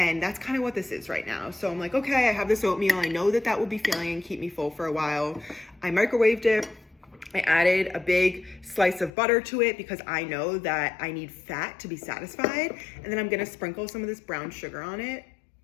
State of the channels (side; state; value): right; drops out; at 9.1 s